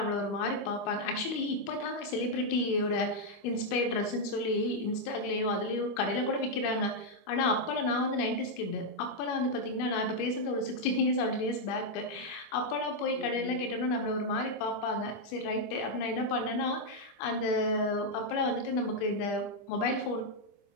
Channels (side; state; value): right; late; 25 ms